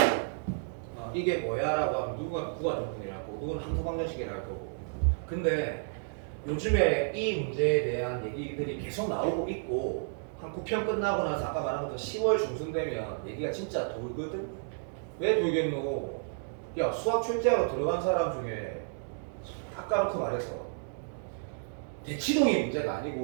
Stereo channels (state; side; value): silent; left; digital silence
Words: 이게 뭐야라고 하면 누구가 구간적분이라고 누구는 함수방정식이라고 하고. 근데 요즘에 이 문제에 대한 얘기들이 계속 나오고 있고 한 9편 끝나고 나서 아까 말한 것처럼 10월 중순 되면 얘기가 진짜 돌거든? 왜 돌겠노? 야 수학 출제하러 들어간 사람 중에 아까부터 말해서 대치동이 문제가